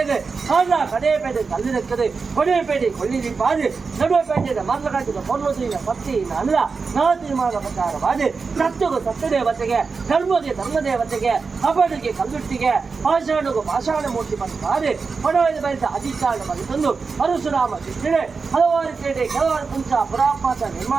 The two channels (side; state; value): left; quieter; 4.8 dB